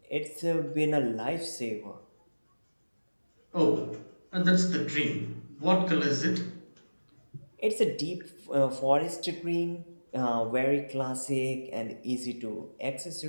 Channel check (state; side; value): inverted; both; correlation -1.00